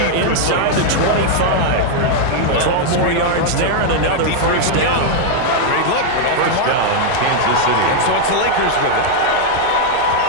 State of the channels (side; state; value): both; different; correlation 0.00